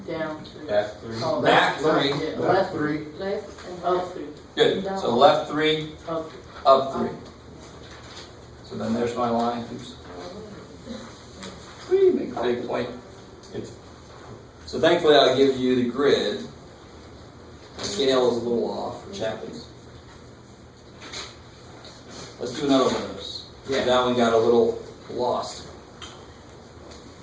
Down 3. Back 3. Oh, back 3. Yeah, Left 3. Left and Up 3. Good. So left 3, Up 3. up 3. So then there's my line. Oops. Whee, make a big point. So thankfully I'll give you the grid. The scale is a little off for Chapman's. Let's do another one of those. Yeah. That one got a little lost.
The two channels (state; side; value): identical; both; correlation 1.00